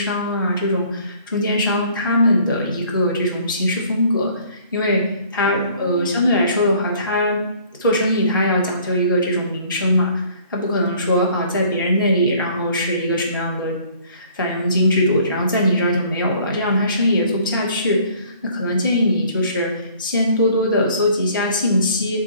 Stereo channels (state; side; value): inverted; both; correlation -0.55